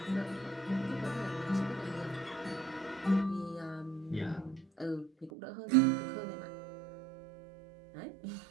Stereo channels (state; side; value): drops out; left; at 5.3 s